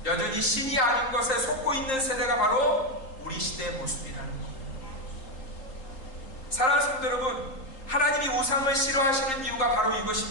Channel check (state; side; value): late; right; 3.8 ms